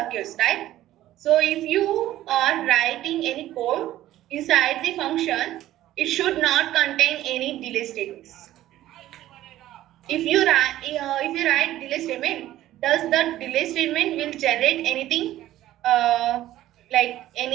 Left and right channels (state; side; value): quieter; left; 14.2 dB